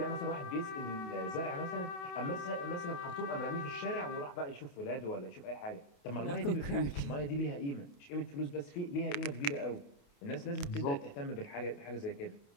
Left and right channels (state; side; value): late; right; 28 ms